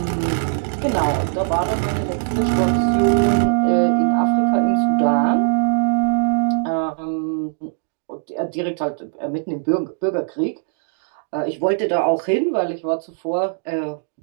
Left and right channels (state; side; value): silent; left; digital silence